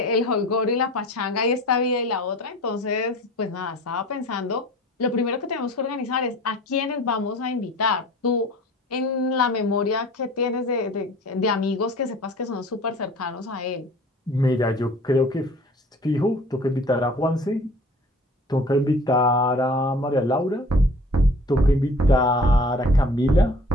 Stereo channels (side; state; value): both; normal; correlation 0.46